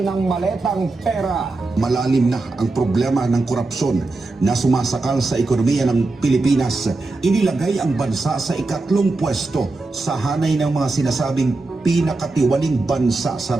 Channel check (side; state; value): left; quieter; 3.3 dB